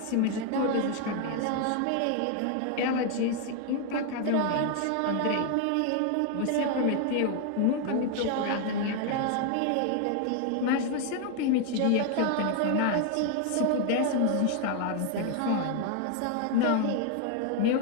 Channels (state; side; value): different; both; correlation 0.01